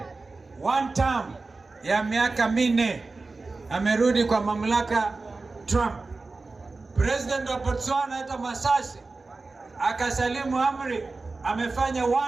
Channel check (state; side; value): quieter; left; 3.7 dB